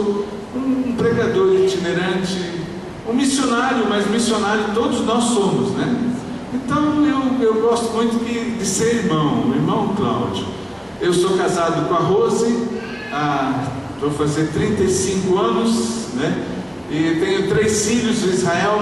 um pregador itinerante, um missionário, mas missionário todos nós somos, né? Então eu gosto muito de ser irmão, o irmão Cláudio. Eu sou casado com a Rose, vou fazer 35 anos, né? E tenho 3 filhos, o Israel,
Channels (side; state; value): both; identical; correlation 1.00